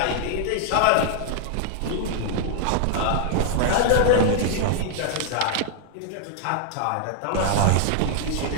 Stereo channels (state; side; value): different; both; correlation -0.01